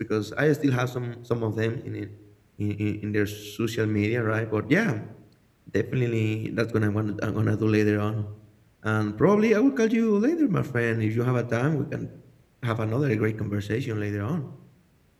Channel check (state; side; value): identical; both; correlation 1.00